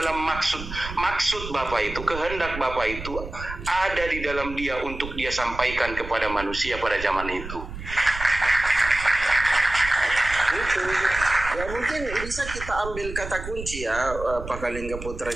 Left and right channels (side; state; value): right; noise; rumble, 10 dB below the sound